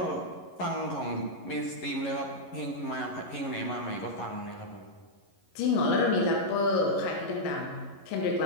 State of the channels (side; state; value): right; late; 11 ms